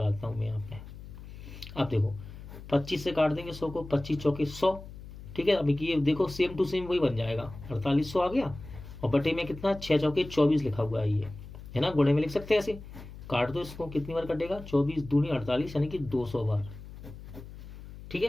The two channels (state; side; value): noise; left; hum, 14 dB below the sound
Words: हूं मैं यहाँ पे। अब देखो 25 से काट देंगे 100 को, 25 चौके 100। ठीक है, अब ये देखो सेम टू सेम वही बन जाएगा, 4800 आ गया और बटे में कितना 6 चौके 24 लिखा हुआ है ये, है ना। गुणे में लिख सकते हैं ऐसे, काट दो इसको, कितनी बार कटेगा 24 दूनी 48 यानी कि 200 बार। ठीक